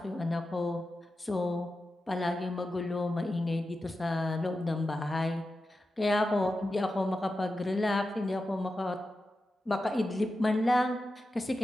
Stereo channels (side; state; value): both; normal; correlation 0.91